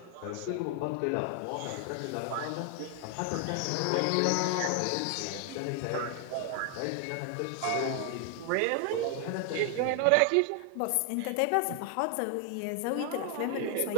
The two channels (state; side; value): different; both; correlation 0.00